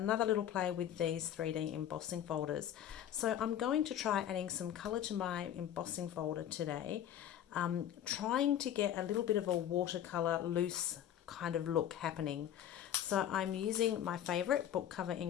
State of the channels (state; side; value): quieter; right; 10.7 dB